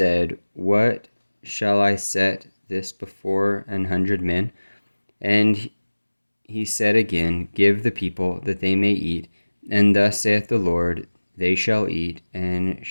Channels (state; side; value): inverted; both; correlation -1.00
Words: What shall I set this before 100 men? And he said again, Give the people, that they may eat. And thus saith the Lord, They shall eat, and